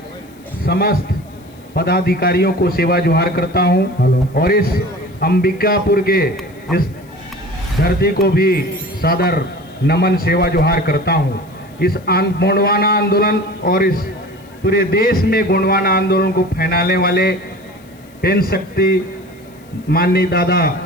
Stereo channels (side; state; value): left; noise; hiss, 29 dB below the sound